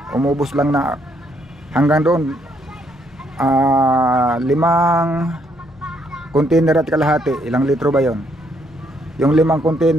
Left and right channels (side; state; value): both; normal; correlation 0.72